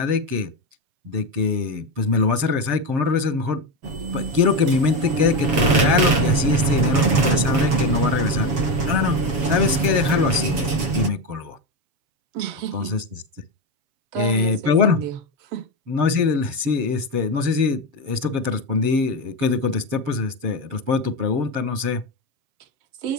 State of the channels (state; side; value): late; left; 7.4 ms